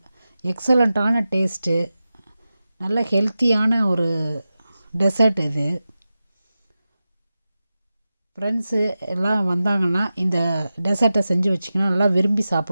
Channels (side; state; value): both; inverted; correlation -0.93